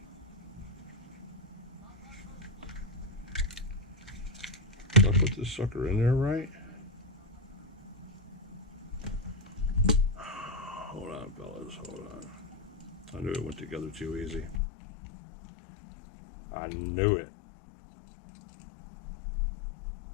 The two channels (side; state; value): right; drops out; at 14.6 s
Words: Did I put this sucker in there right? Hold on, fellas. Hold on. I knew it went together too easy. I knew it.